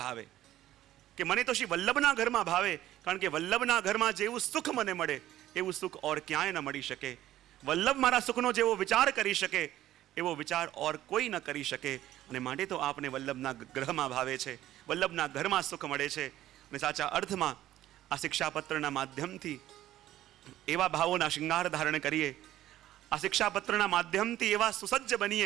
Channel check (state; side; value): quieter; left; 13.7 dB